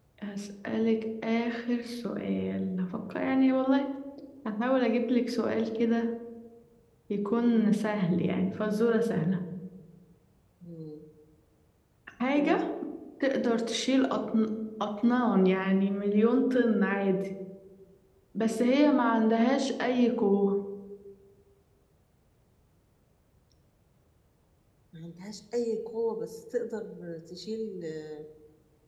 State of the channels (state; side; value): identical; both; correlation 1.00